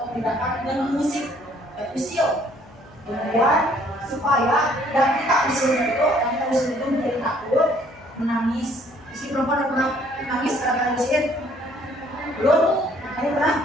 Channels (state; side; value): noise; left; hum, 26 dB below the sound